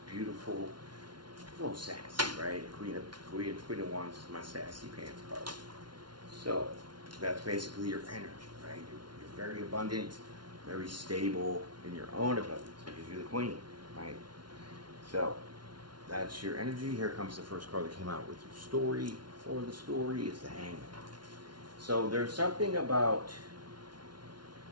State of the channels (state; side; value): late; left; 0.71 ms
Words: beautiful, a little sassy, right? Queen of Wands is my sassy pants card. So that's basically your energy, right? You're very abundant, very stable in your own abundance because you're the queen. Right? So, that's your energy. Here comes the first card that came out with your story. For the story is the Hangman. So, there's something about